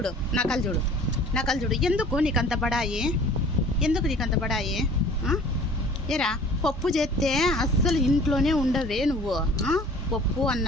నకలు చూడు, నకలు చూడు. ఎందుకు నీకు అంత బడాయి? ఎందుకు నీకు అంత బడాయి? ఏరా పప్పు చేస్తే అస్సలు ఇంట్లోనే ఉండవే నువ్వు. పప్పు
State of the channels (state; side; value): normal; both; correlation 0.47